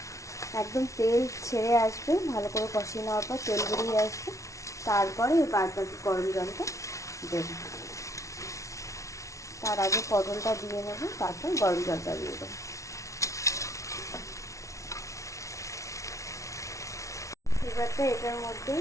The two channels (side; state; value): right; late; 0.15 ms